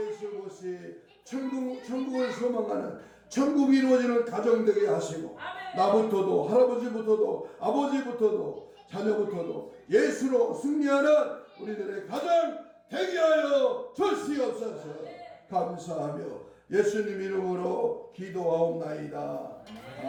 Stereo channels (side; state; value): both; identical; correlation 1.00